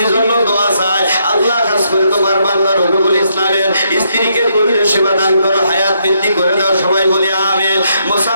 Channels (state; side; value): inverted; both; correlation -0.76